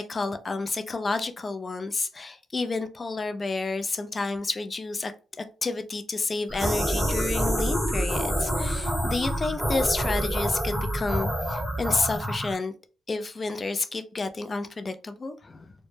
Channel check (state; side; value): normal; both; correlation 0.91